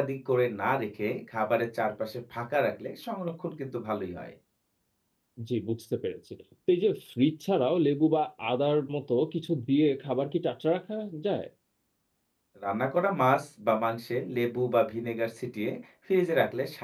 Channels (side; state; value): both; identical; correlation 1.00